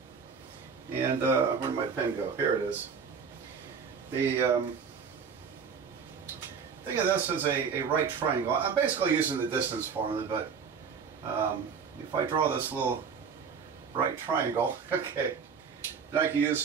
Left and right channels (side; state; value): left; quieter; 6.2 dB